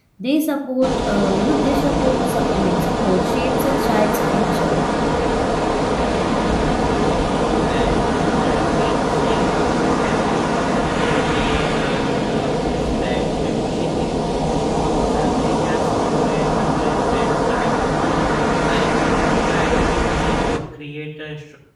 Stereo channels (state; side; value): identical; both; correlation 1.00